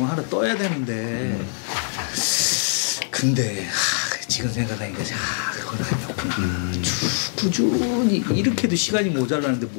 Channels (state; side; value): silent; right; digital silence